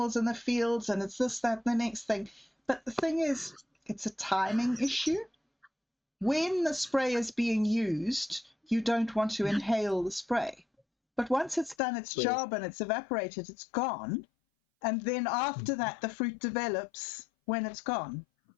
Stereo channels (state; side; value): drops out; right; at 11.8 s